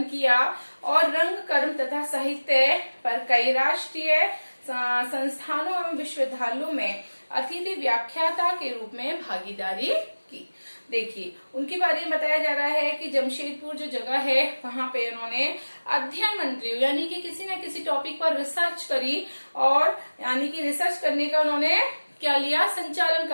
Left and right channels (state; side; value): inverted; both; correlation -1.00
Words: किया और रंग कर्म तथा साहित्य पर कई राष्ट्रीय संस्थानों एवं विश्वविद्यालयों में अतिथि व्याख्याता के रूप में भागीदारी की। देखिए, उनके बारे में बताया जा रहा है कि जमशेदपुर जो जगह है वहां पे उन्होंने अध्ययन मंडलियों यानी कि किसी न किसी टॉपिक पर रिसर्च करी, और यानी कि रिसर्च करने का उन्होंने क्या लिया, संचालन